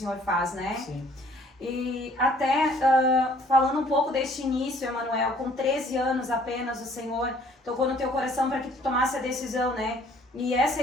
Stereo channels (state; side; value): normal; both; correlation 0.58